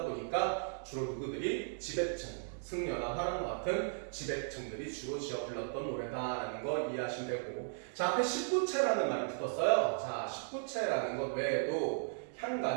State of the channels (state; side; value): silent; left; 54 dB below the other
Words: 보니까 주로 누구들이 지배층, 승려나 화랑과 같은 지배층들이 주로 지어 불렀던 노래다라는 거 이해하시면 되고, 자, 앞에 19체라는 말이 붙었어요. 자, 19체라는 것 외에도